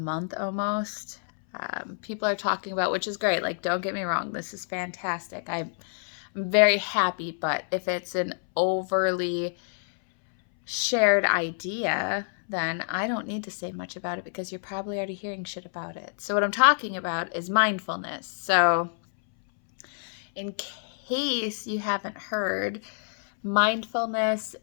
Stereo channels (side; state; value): right; silent; 60 dB below the other